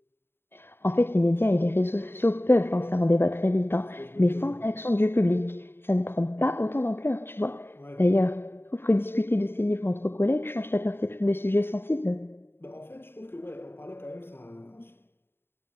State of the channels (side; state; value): right; late; 0.11 ms